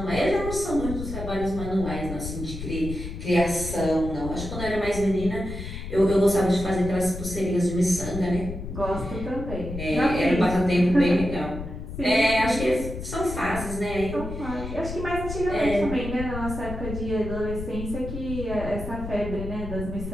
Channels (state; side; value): noise; left; rumble, 8 dB below the sound